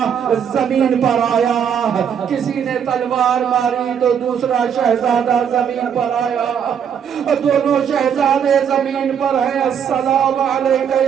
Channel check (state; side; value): quieter; left; 8.0 dB